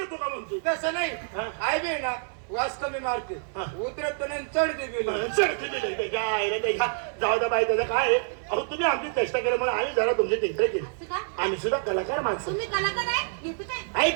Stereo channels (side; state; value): left; silent; 60 dB below the other